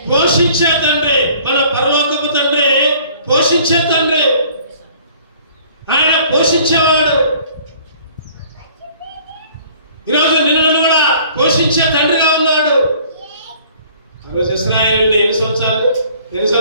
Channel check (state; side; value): inverted; both; correlation -0.54